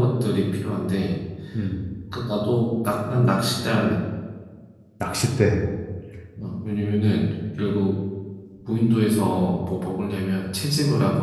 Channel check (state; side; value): identical; both; correlation 1.00